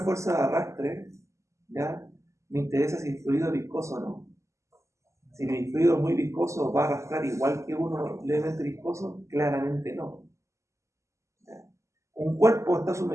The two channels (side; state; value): left; late; 0.14 ms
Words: de arrastre, ¿ya? Me interesa si el fluido es viscoso o no. Si el fluido es muy viscoso, ¿va a arrastrar igual que uno levemente viscoso? Claramente no. ¿Ya? Un cuerpo está